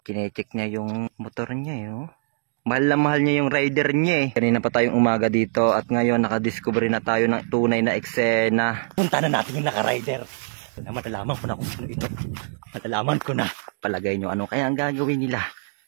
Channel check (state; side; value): silent; left; digital silence